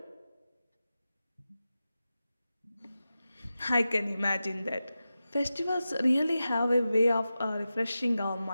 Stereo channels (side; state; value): both; inverted; correlation -0.93